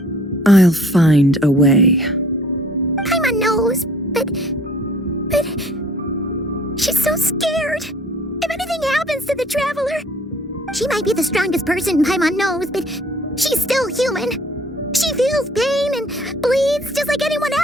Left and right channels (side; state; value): both; normal; correlation 0.55